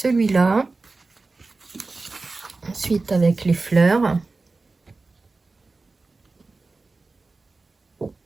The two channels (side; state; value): left; quieter; 3.6 dB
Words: Ensuite, avec les fleurs.